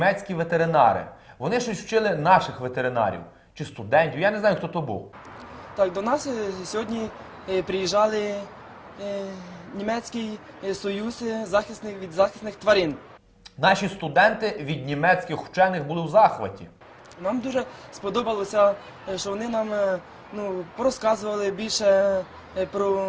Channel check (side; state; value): both; identical; correlation 1.00